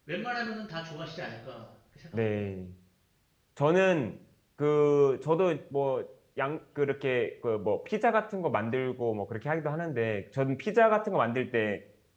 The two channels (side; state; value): both; identical; correlation 1.00